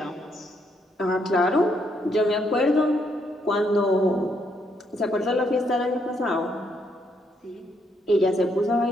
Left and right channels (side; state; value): both; normal; correlation 0.74